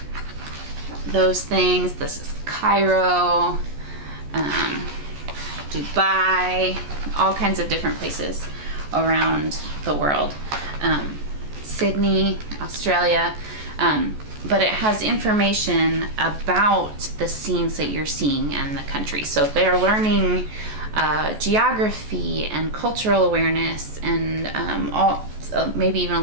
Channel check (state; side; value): late; left; 14 ms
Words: those things. This is Cairo, Dubai, all kinds of different places around the world. Sydney, Australia, but it has information about the scenes that you're seeing and the country. So they're learning geography and cultural awareness and maybe even a